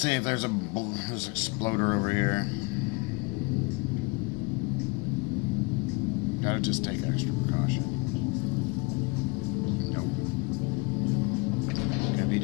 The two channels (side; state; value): right; quieter; 26.4 dB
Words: if there's there's an exploder over here. Gotta just take extra precaution. Nope. Gonna be